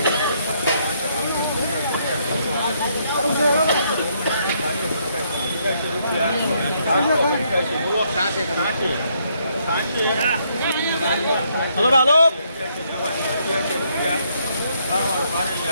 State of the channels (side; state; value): both; inverted; correlation -0.72